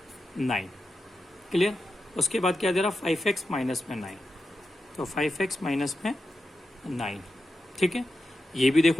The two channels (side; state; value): both; normal; correlation 0.90